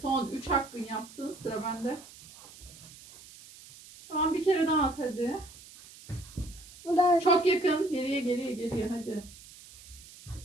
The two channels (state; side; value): noise; right; hiss, 19 dB below the sound